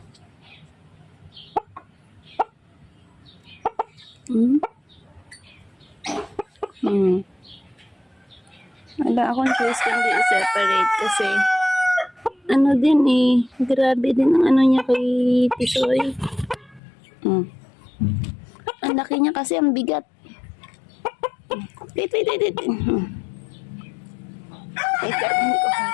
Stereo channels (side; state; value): right; drops out; at 16.8 s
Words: Wala akong choice kundi i-separate kasi ano din eh, grabe din ang ano niya kay Tisoy. Ang laki niya kasi, ang bigat. Wait. Ay, gagawin ko pa.